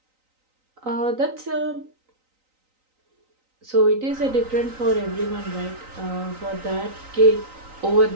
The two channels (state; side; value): late; left; 3.9 ms